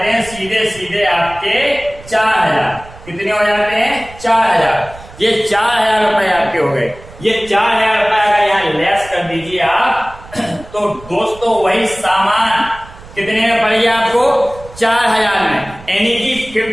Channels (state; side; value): noise; right; rumble, 19 dB below the sound